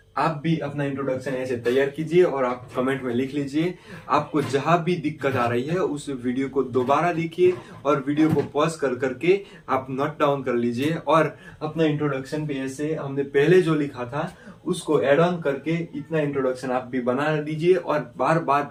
आप भी अपना introduction ऐसे तैयार कीजिए और आप comment में लिख लीजिए। आपको जहां भी दिक्कत आ रही है उस वीडियो को दोबारा देखिए और वीडियो को पॉज कर करके आप नोट डाउन कर लीजिए और अपना इंट्रोडक्शन पे ऐसे हमने पहले जो लिखा था उसको एड ऑन करके इतना इंट्रोडक्शन आप भी बना लीजिए और बार बार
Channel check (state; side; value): identical; both; correlation 1.00